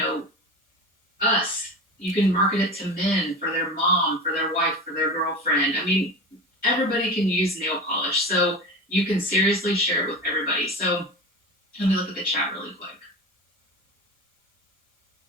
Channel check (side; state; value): both; normal; correlation 0.29